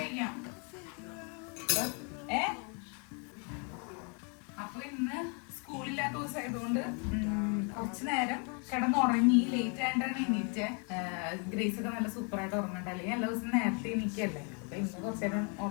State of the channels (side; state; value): right; quieter; 36.8 dB